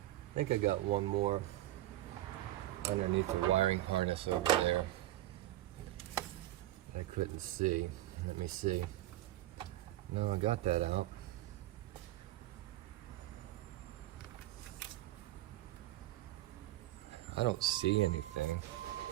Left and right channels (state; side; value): quieter; left; 15.3 dB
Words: think I got one more underneath the wiring harness over there. I couldn't see. Let me see. No, I got that out. I don't see anything.